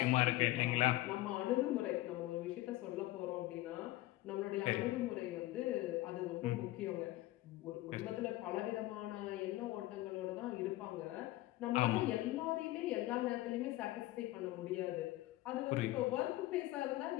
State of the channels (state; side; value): quieter; right; 17.3 dB